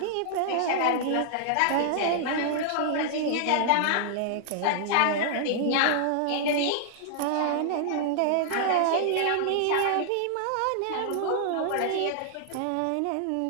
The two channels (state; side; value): different; both; correlation -0.01